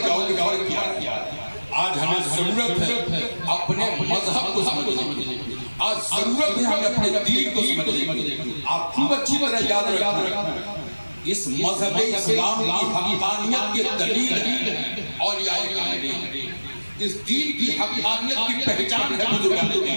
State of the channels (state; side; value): inverted; both; correlation -1.00